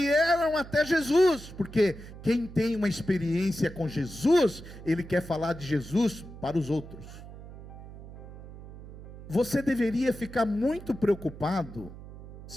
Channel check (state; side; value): noise; right; hum, 15 dB below the sound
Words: até Jesus, porque quem tem uma experiência com Jesus, ele quer falar de Jesus para os outros. Você deveria ficar muito preocupado,